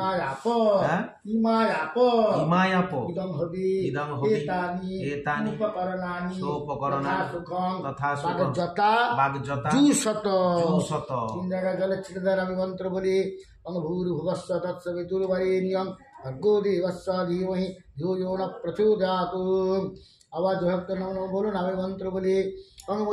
হ্যাঁ ইমায়াপ ইমায়াপ ইদং হবি ইদং হবি এতানি উপকরণানি সোপকরণানি সুখং তথা সুখং বাগযতা বাগযতা জুশত জুশত। 3 জায়গায় জলে ছেড়ে দেন আমি মন্ত্র বলি ভূর্ভুবস্ব তৎসবিতুর্বরেণ্যং ভর্গো দেবস্য ধীমহি ধিয়ো ন প্রচোদয়াৎ। আওয়াজ ভক্ত নম বলুন আমি মন্ত্র বলি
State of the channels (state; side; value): identical; both; correlation 1.00